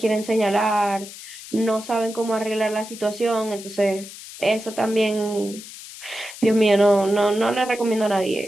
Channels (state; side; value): noise; left; hiss, 14 dB below the sound